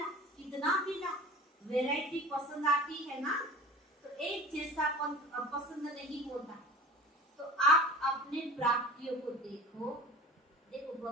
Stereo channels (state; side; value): normal; both; correlation 0.39